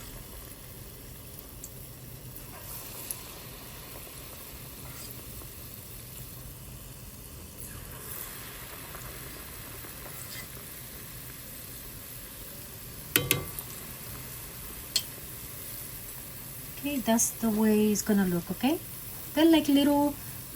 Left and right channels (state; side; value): identical; both; correlation 1.00